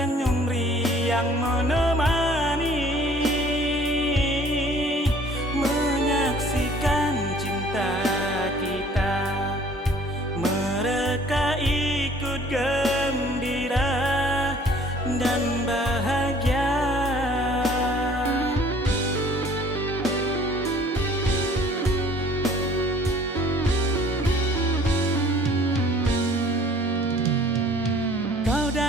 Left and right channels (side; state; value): both; normal; correlation 0.54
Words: riang menemani, menyaksikan cinta kita. Mereka ikut gembira dan bahagia. Kau